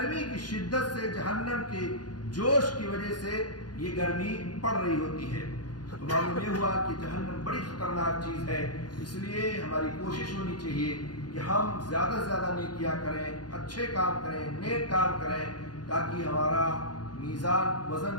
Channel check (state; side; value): late; right; 0.70 ms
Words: کی شدت سے جہنم کے جوش کی وجہ سے یہ گرمی پڑ رہی ہوتی ہے۔ تو معلوم یہ ہوا کہ جہنم بڑی خطرناک چیز ہے، اس لیے ہماری کوشش ہونی چاہیے کہ ہم زیادہ سے زیادہ نیکیاں کریں، اچھے کام کریں، نیک کام کریں، تاکہ ہمارا میزان وزن